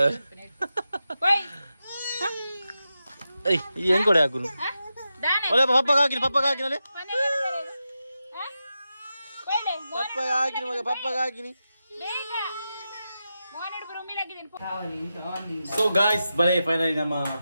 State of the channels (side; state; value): both; inverted; correlation -0.90